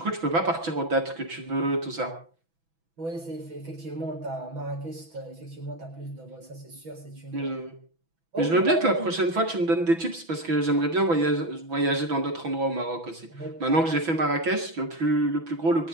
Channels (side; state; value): left; late; 6.1 ms